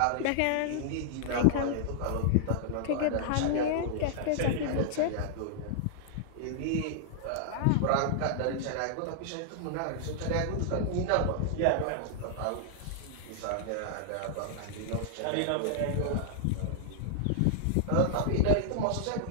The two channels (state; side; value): different; both; correlation -0.01